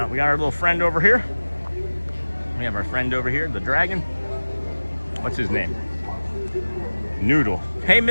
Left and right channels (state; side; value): inverted; both; correlation -1.00